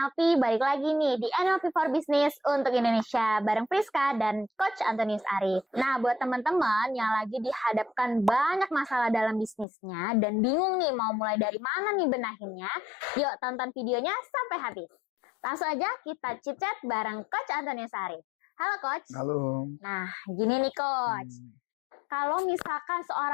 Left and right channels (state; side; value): drops out; right; at 9.7 s